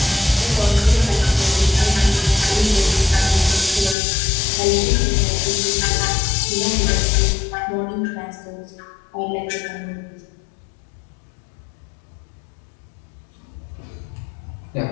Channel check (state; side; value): drops out; right; at 4.0 s